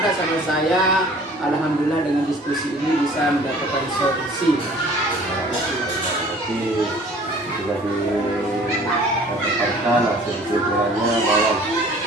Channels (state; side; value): normal; both; correlation 0.50